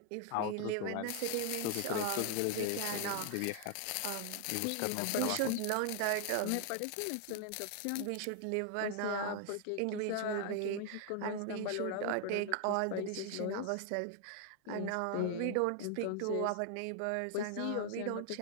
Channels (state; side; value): different; both; correlation 0.00